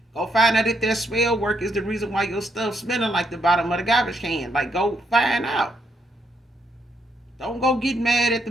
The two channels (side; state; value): both; normal; correlation 0.76